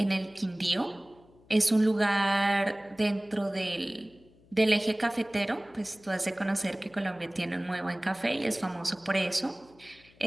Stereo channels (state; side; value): noise; left; hum, 28 dB below the sound